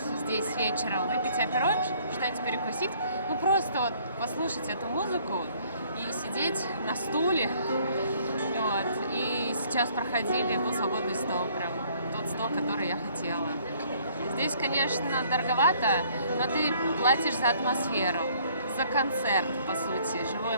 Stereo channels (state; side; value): inverted; both; correlation -0.60